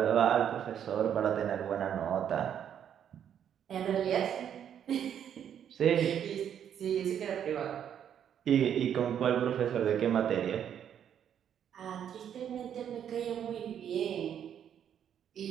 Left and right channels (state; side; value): quieter; left; 9.1 dB